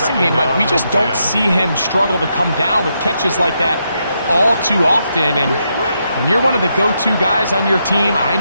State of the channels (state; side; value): inverted; both; correlation -0.81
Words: game. Like, we just don't see him struggle to come down with catches like that all too often. And when you're one of the go-to guys on your team, I